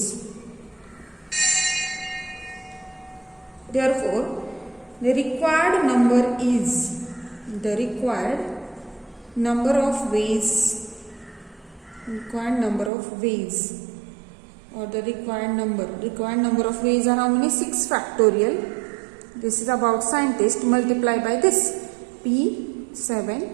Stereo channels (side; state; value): left; drops out; at 12.9 s